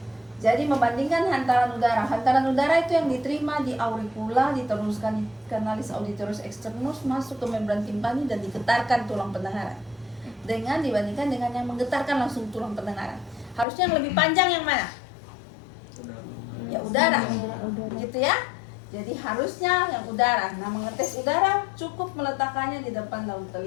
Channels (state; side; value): drops out; right; at 13.7 s